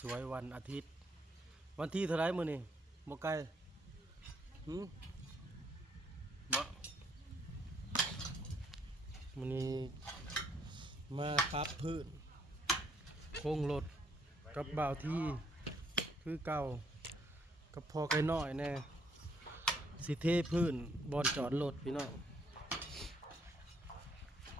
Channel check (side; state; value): both; normal; correlation 0.70